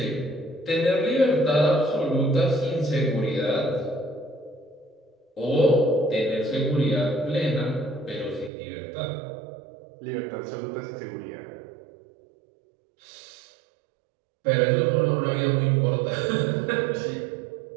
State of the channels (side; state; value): left; drops out; at 8.5 s